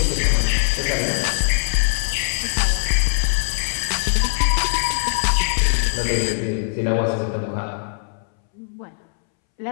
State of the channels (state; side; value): silent; right; 65 dB below the other